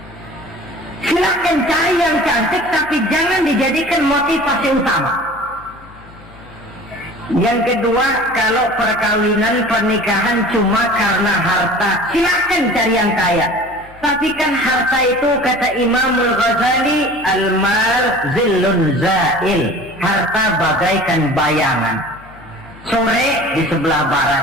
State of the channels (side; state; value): left; noise; hum, 23 dB below the sound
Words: Silakan cari yang cantik, tapi jangan dijadikan motivasi utama. Yang kedua, kalau perkawinan pernikahan cuma karena harta, silakan cari yang kaya. Tapi kan harta itu kata Imamul Ghazali, al-mal zillun zail, harta bagaikan bayangan. Sore di sebelah barat,